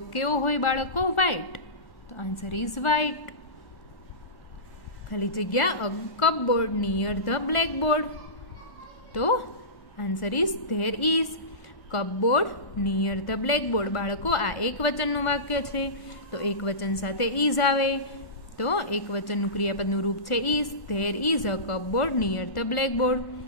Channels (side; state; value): right; late; 1.1 ms